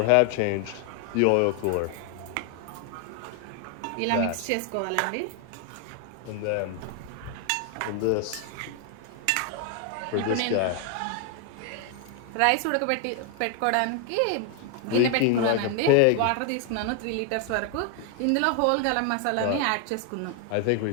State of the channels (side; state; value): both; different; correlation 0.00